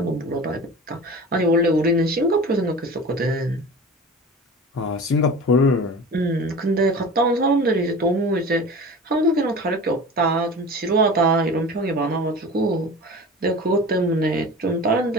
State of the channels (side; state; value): both; normal; correlation 0.36